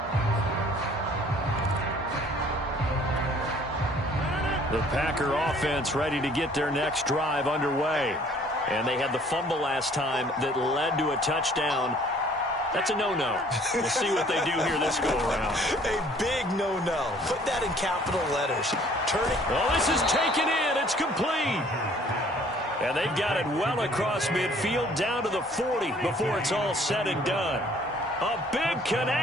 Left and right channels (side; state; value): both; normal; correlation 0.57